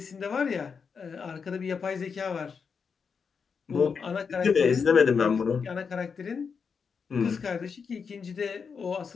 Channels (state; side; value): quieter; right; 5.9 dB